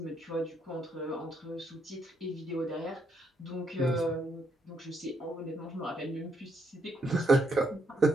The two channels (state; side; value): normal; both; correlation 0.75